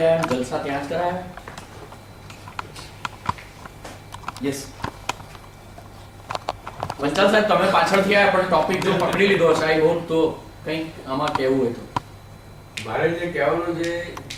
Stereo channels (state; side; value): identical; both; correlation 1.00